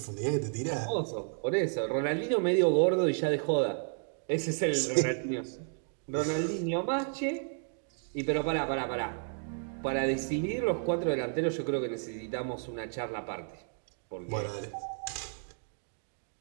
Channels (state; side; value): silent; left; 56 dB below the other